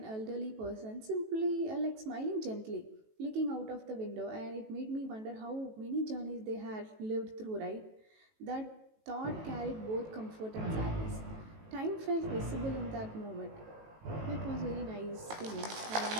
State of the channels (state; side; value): late; left; 18 ms